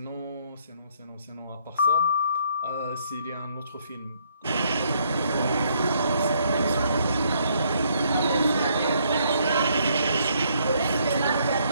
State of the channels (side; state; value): both; inverted; correlation -0.69